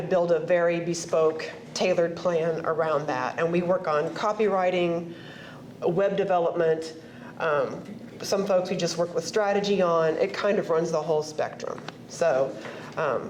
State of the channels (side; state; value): both; identical; correlation 1.00